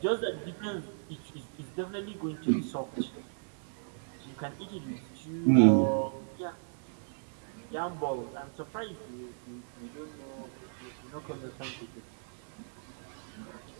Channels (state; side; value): silent; left; digital silence